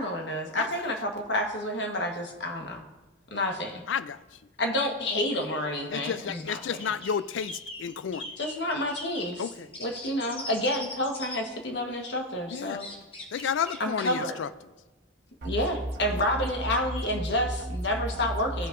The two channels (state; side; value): normal; both; correlation 0.07